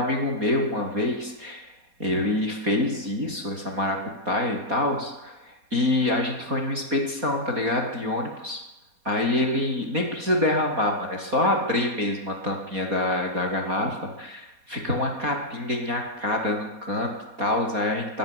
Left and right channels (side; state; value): left; late; 4.2 ms